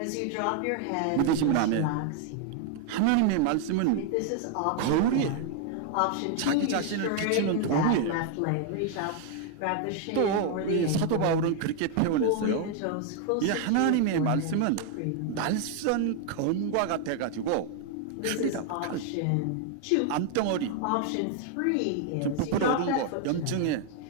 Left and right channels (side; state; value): both; different; correlation 0.00